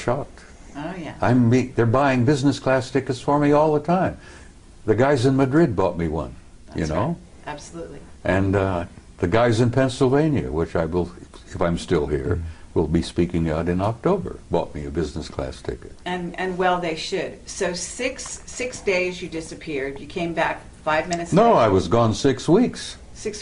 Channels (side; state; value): both; identical; correlation 1.00